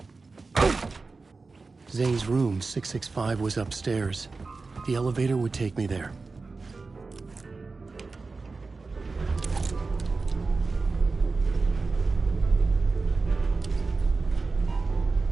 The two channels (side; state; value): left; quieter; 4.0 dB